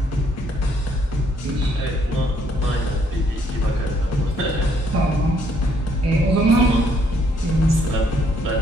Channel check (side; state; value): both; normal; correlation 0.68